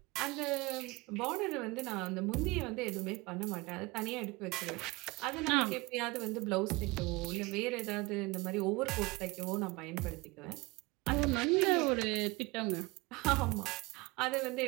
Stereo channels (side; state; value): left; quieter; 23.8 dB